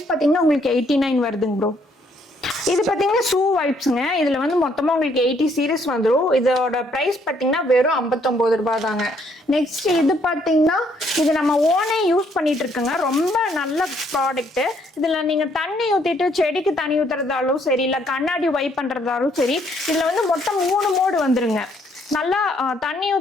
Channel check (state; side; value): normal; both; correlation 0.68